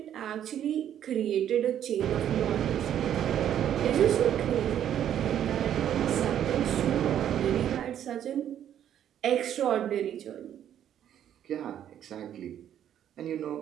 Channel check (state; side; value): quieter; left; 10.3 dB